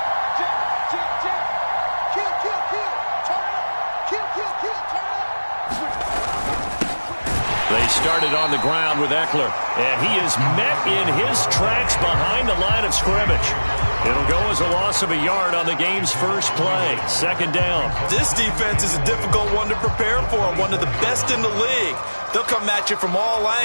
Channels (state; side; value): inverted; both; correlation -1.00